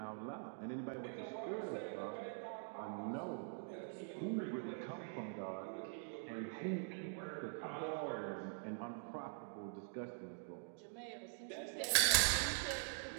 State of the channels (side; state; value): left; silent; digital silence